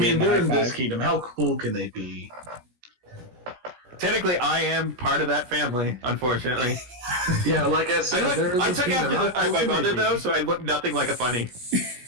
mean, gave him a they're high in this five. kingdom. How cool can they be? Technically, I am part of that family. Unfortunately, Yeah, like I said, they're in I this took kingdom. after How cool my can they mother be? though, so I look nothing like a funny.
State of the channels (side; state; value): left; late; 16 ms